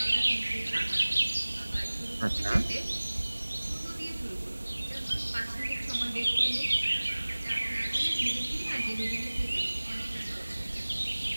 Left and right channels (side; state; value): both; inverted; correlation -1.00